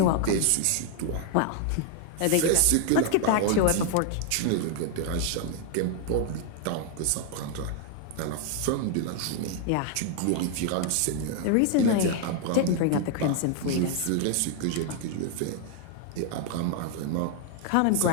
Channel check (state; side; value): different; both; correlation 0.00